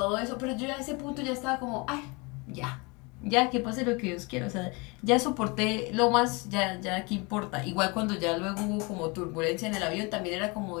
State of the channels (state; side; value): quieter; right; 28.3 dB